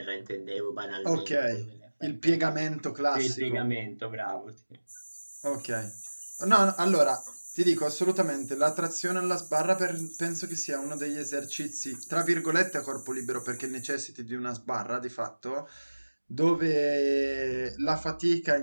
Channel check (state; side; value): inverted; both; correlation -1.00